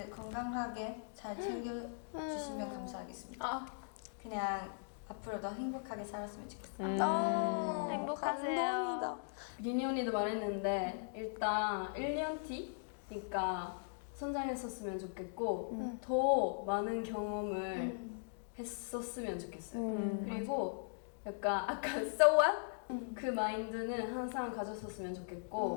건강하게 잘 챙겨주시면 감사하겠습니다. 그냥 앞으로도 행복하게 살았으면 좋겠어요. 행복하세요. 감동이다. 리니 언니도 말했는데 일단 1년 뒤니까 성장했었으면 좋겠고 더 많은 경험을 했었으면 좋겠어요. 그리고 약간 아까 so what? 그 마인드는 항상 가졌었으면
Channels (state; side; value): silent; right; digital silence